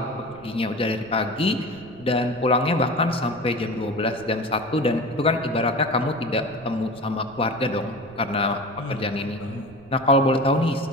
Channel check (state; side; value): noise; right; rumble, 22 dB below the sound